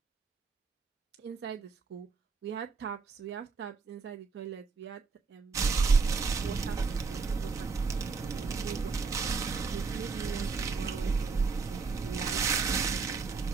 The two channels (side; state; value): left; quieter; 4.7 dB